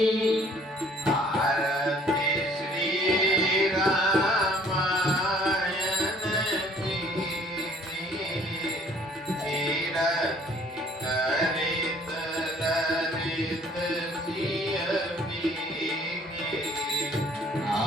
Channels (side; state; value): both; normal; correlation 0.57